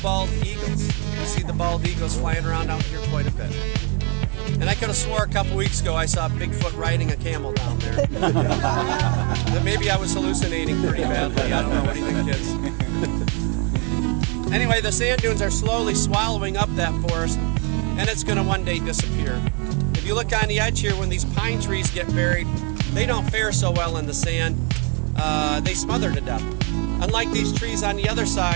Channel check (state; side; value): quieter; left; 34.0 dB